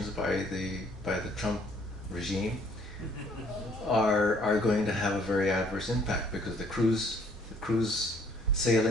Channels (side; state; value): both; normal; correlation 0.61